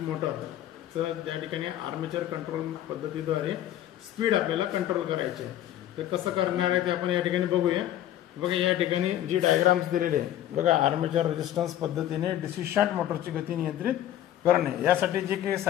मोटरचं. त्या ठिकाणी आर्मेचर कंट्रोल पद्धतीद्वारे स्पीड आपल्याला कंट्रोल करायची आहे. तर कसं करणार आहे ते आपण या ठिकाणी बघूया. बघा या ठिकाणी जी डायग्राम्स दिलेली आहे बघा, आर्मेचर रेजिस्टन्स पद्धतीने डीसी शंट मोटरची गती नियंत्रित करणे. यासाठी जे काही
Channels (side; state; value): right; quieter; 12.2 dB